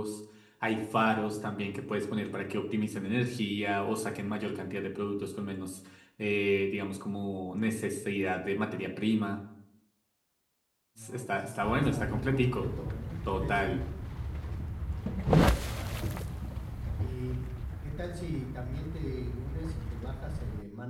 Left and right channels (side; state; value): both; identical; correlation 1.00